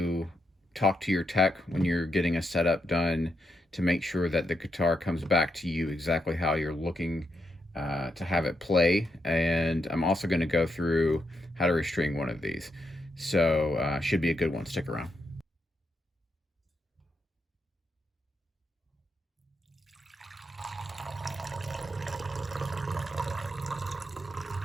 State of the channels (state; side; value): normal; both; correlation 0.82